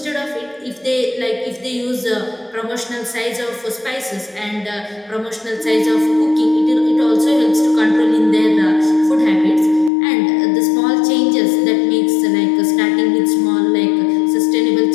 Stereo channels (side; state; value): right; drops out; at 9.9 s